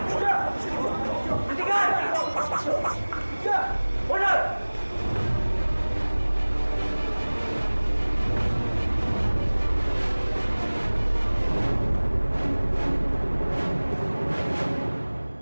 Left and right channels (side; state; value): both; inverted; correlation -1.00